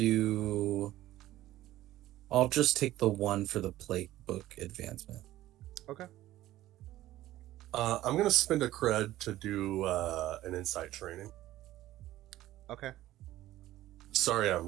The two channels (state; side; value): quieter; left; 15.0 dB